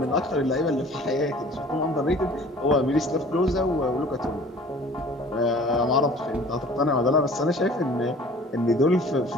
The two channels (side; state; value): both; normal; correlation 0.48